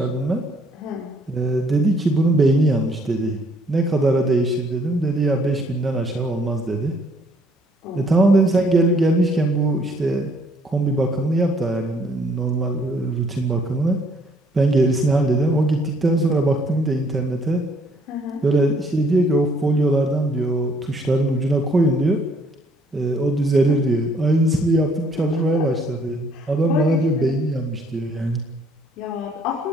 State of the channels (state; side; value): normal; both; correlation 0.64